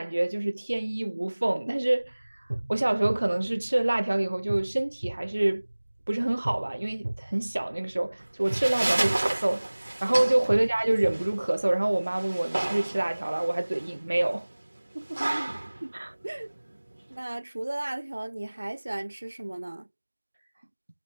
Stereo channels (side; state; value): both; inverted; correlation -1.00